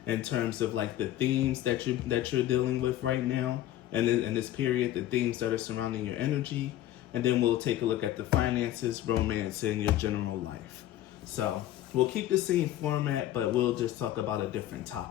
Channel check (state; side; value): quieter; right; 13.4 dB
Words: in terms of the themes that you're dealing with right now and in this period, the themes that are surrounding your energy, and then we'll take a look at the finances, romance, and your general life. So we'll keep the same format, but we'll just talk about a different